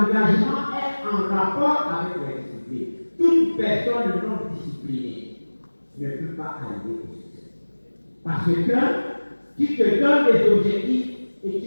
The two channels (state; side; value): inverted; both; correlation -1.00